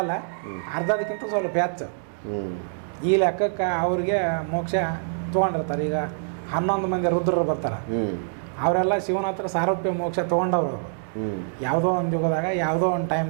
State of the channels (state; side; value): silent; left; digital silence